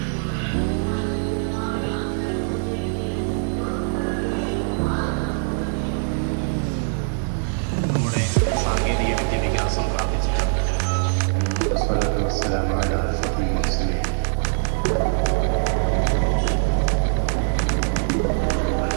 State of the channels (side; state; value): left; silent; digital silence